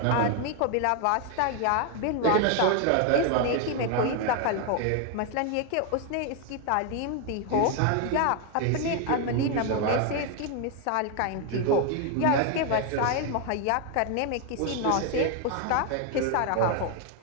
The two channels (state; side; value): different; both; correlation 0.01